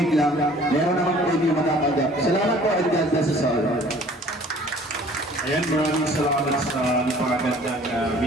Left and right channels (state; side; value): normal; both; correlation 0.52